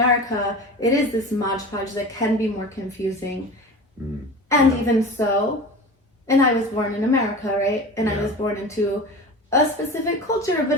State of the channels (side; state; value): both; normal; correlation 0.33